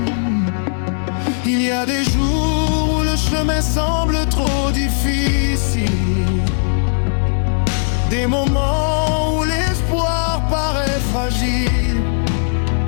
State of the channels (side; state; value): right; silent; 68 dB below the other